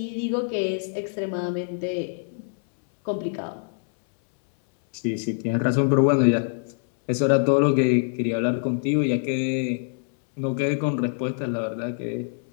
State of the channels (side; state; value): right; silent; 62 dB below the other